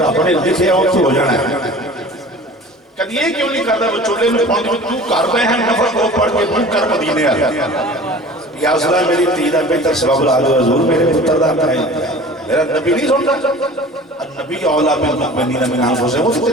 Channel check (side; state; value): both; normal; correlation 0.42